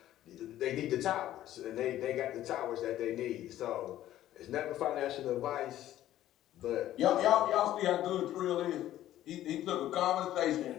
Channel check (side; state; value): right; quieter; 13.2 dB